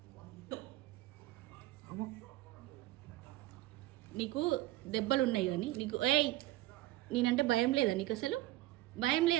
నీకు దెబ్బలు ఉన్నాయి కానీ నీకు నేనంటే భయం లేదా నీకు అసలు? భయం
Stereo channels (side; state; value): left; quieter; 16.8 dB